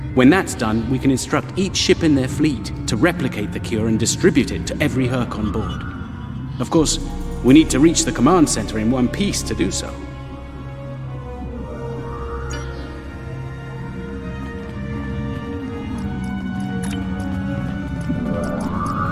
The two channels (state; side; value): identical; both; correlation 1.00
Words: When that's done, we can instruct each ship in their fleet to replicate the cure and distribute it to every Hur'q on board. Of course, we need to reach the command center in one piece to do so.